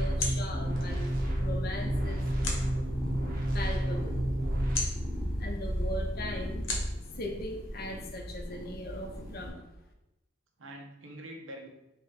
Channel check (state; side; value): normal; both; correlation 0.81